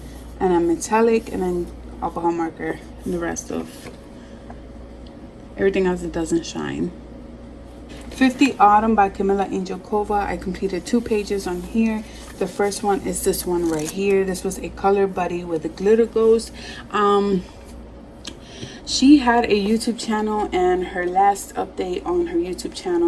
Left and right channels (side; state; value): both; identical; correlation 1.00